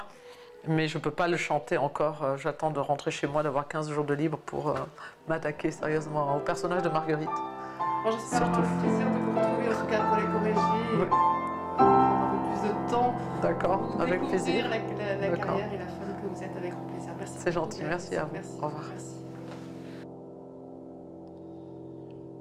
Mais je ne peux pas le chanter encore. J'attends de rentrer chez moi, d'avoir 15 jours de libre pour m'attaquer sérieusement au personnage de Marguerite. Bon, j'espère avoir le plaisir de vous retrouver en tout cas pour les Corégies et prendre un peu plus de temps pour avec plaisir. La carrière et la femme que vous êtes avec grand plaisir. Merci. C'est gentil, merci à vous. Merci. Au revoir. Merci.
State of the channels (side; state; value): both; identical; correlation 1.00